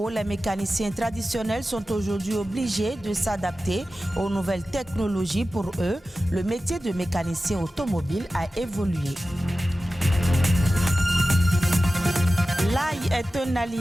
les mécaniciens traditionnels sont aujourd'hui obligés de s'adapter aux nouvelles technologies. Pour eux, le métier de mécanicien automobile a évolué. L'ail est un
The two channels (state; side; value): normal; both; correlation 0.94